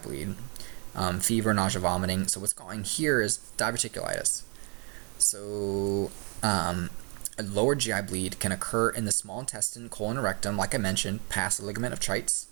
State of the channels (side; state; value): left; quieter; 34.1 dB